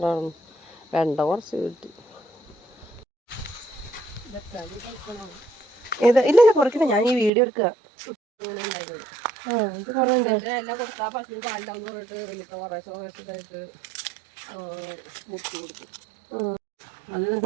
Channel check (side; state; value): left; drops out; at 7.3 s